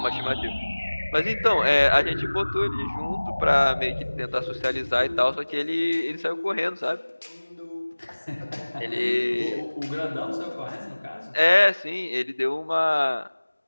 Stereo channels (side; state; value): both; inverted; correlation -1.00